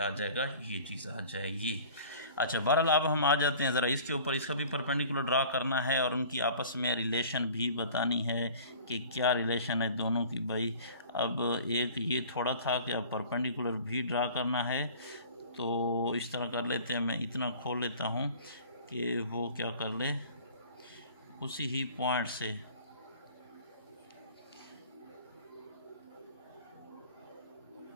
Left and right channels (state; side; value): inverted; both; correlation -0.46